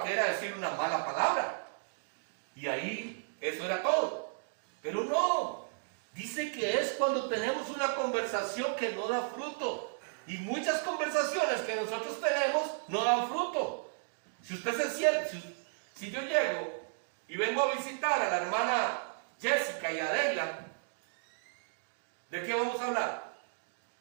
que era decir una mala palabra. Y ahí eso era todo. Pero no. Dice que es cuando tenemos una conversación que no da fruto. Y muchas conversaciones que nosotros tenemos no dan fruto. Si usted se siente, si yo llego y vengo a visitar a la hermana Jessica y a Adela, ¿de qué vamos a hablar?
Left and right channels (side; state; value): left; silent; digital silence